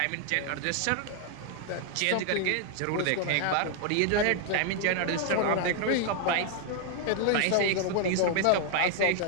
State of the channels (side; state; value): both; different; correlation 0.00